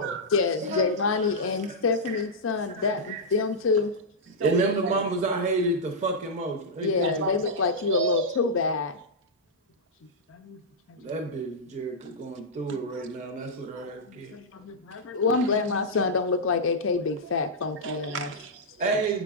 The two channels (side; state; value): both; normal; correlation -0.09